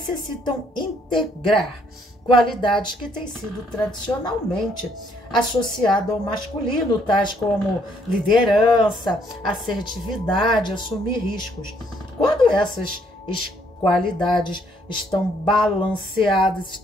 integrar qualidades que têm sido tradicionalmente associadas ao masculino, tais como liderança, assertividade, assumir riscos. Quando essas qualidades estão balanceadas,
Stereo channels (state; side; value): normal; both; correlation 0.68